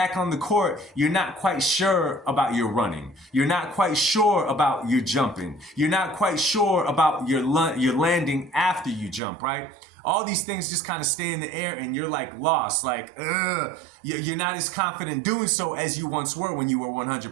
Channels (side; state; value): left; drops out; at 9.2 s